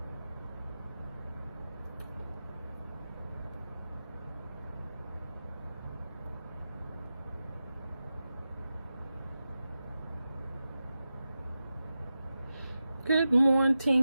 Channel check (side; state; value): both; inverted; correlation -0.93